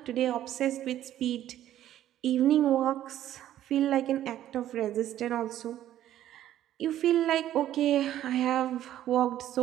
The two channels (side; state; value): left; quieter; 12.3 dB